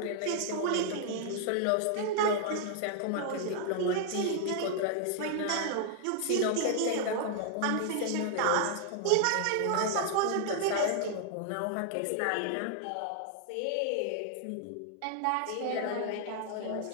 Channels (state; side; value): different; both; correlation 0.00